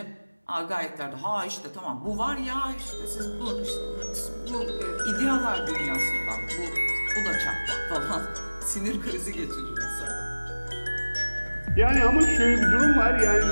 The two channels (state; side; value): inverted; both; correlation -1.00